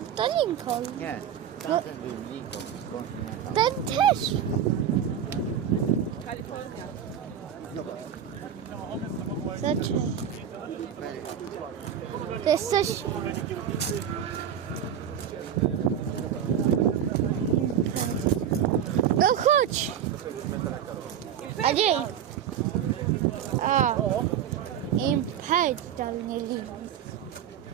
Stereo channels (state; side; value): quieter; left; 9.1 dB